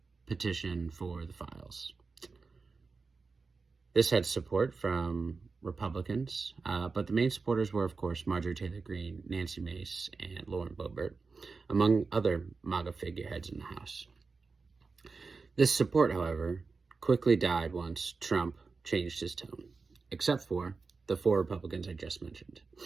petition for the files. This had support from Republicans, but the main supporters were, of course, Marjorie Taylor Greene, Nancy Mace, and Lauren Boebert, among other MAGA figureheads in the House. This support, however, quickly died once Trump changed his tone, except for the 4 Republicans I just mentioned,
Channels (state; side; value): quieter; left; 4.4 dB